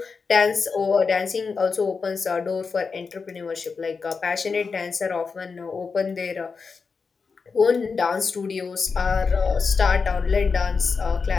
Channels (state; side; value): quieter; right; 5.0 dB